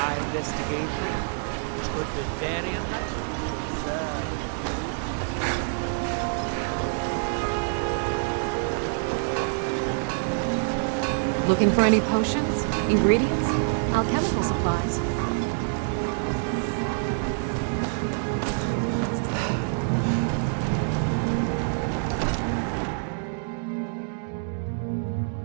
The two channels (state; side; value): silent; left; 60 dB below the other